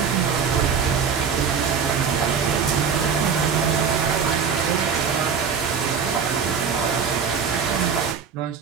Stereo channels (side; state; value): left; quieter; 6.4 dB